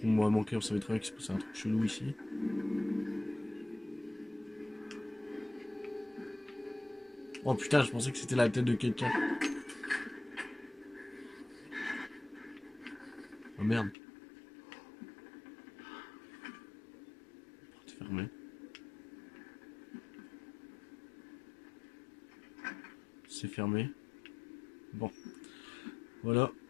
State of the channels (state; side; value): drops out; right; at 14.0 s